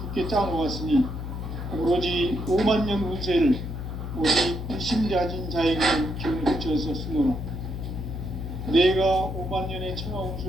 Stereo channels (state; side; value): noise; left; hum, 6 dB below the sound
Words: 굳게 짜놓았으니 오로지 5만 년 운세를 오직 일심자진 자에게 기운을 붙여서 쓰노라. 내가 5만 년의 천하